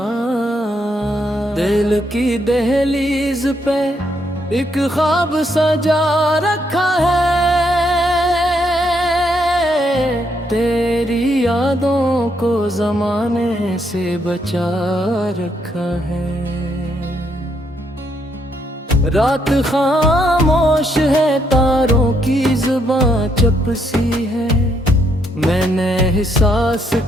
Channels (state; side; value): normal; both; correlation 0.75